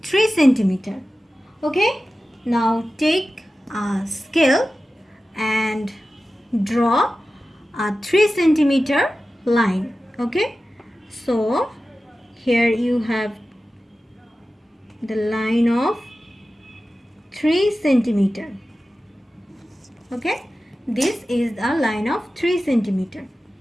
3 cm. Okay, now take a scale and draw a 3 cm line. Okay, so here you have the line of 3 cm. Okay, this is a line of 3 cm.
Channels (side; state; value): both; normal; correlation 0.95